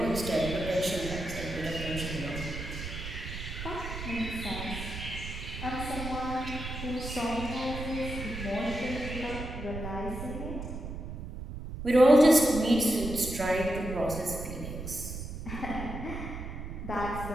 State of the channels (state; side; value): noise; right; rumble, 7 dB below the sound